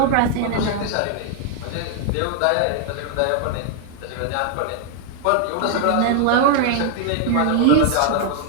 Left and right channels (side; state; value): both; different; correlation 0.00